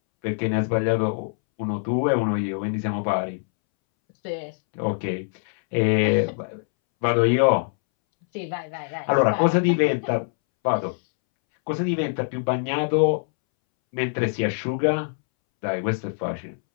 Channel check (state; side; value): silent; right; 63 dB below the other